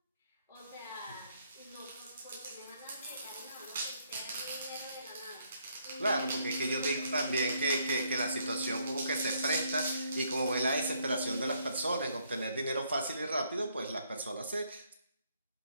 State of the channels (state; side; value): inverted; both; correlation -0.71